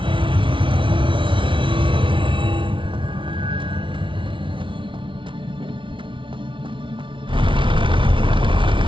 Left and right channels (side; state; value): left; late; 0.25 ms